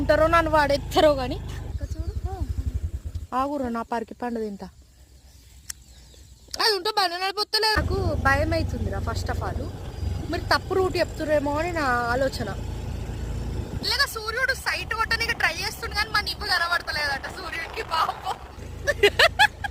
నన్ను వాడెత్తారో కానీ ఆగురు నా పరికి పండు తింటా. అది ఉంటే బండి నడిపోతలేదు, నాకు భయం అవుతుందిరా. ఫస్ట్ ఆఫ్ ఆల్ మీరు తప్పు రూట్ చెప్తురేమో అని నా ఆలోచన. ఇలాగా సూర్యుడు సైట్ కొట్టడానికి ట్రై చేస్తుండే కానీ మన ఇవ్వ కనబడతలేదట సూర్యుడికి. పాపం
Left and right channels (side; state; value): both; identical; correlation 1.00